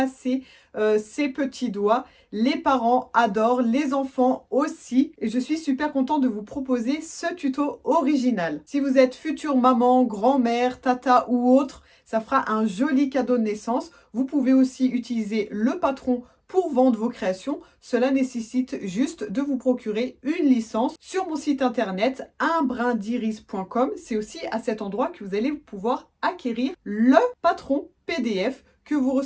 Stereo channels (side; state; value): both; identical; correlation 1.00